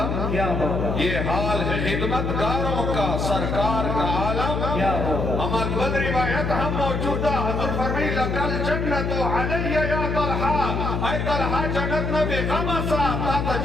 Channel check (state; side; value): noise; left; hum, 1 dB below the sound